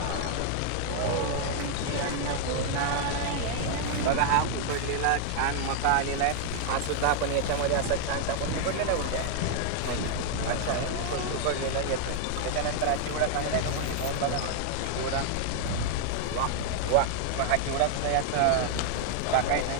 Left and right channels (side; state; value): both; different; correlation 0.00